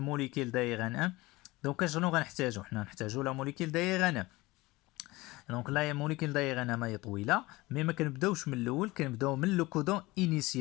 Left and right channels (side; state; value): right; quieter; 20.9 dB